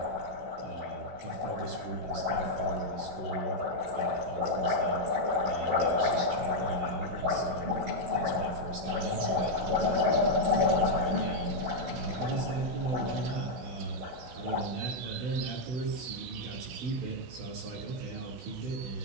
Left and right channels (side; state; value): left; late; 16 ms